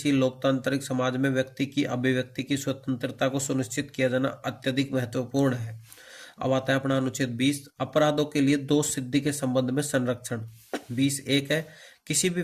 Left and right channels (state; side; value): identical; both; correlation 1.00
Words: लोकतांत्रिक समाज में व्यक्ति की अभिव्यक्ति की स्वतंत्रता को सुनिश्चित किया जाना अत्यधिक महत्वपूर्ण है। अब आता है अपना अनुच्छेद 20, अपराधों के लिए दोष सिद्धि के संबंध में संरक्षण। 20(1) है, किसी भी